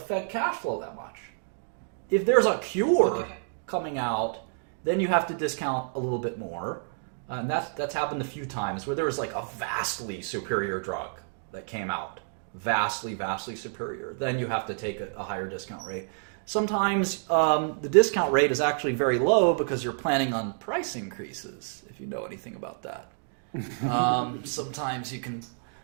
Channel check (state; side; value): silent; left; digital silence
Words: cash flow that much. If there's a cure coming out, then you have to discount a little bit more. And that's happened a few times where there was like a vastly superior drug that came out. Vastly superior. Then you have to take a higher discount rate. Sometimes the discount rate is actually very low because you're planning on price increases, if you know anything about that. Sometimes you can